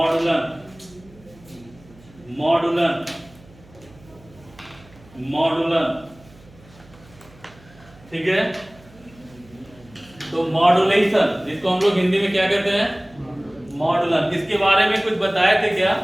ठीक है। तो मॉड्यूलेशन जिसको हम लोग हिंदी में क्या कहते हैं, मॉड्यूलन। इसके बारे में कुछ बताए थे क्या,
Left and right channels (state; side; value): noise; right; hum, 25 dB below the sound